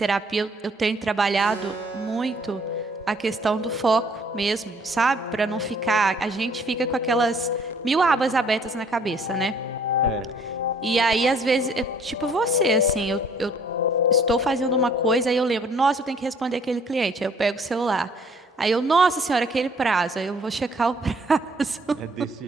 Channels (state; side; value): normal; both; correlation 0.59